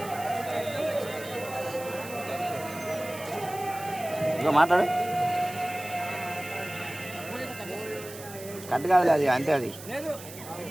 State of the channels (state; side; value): noise; right; hiss, 14 dB below the sound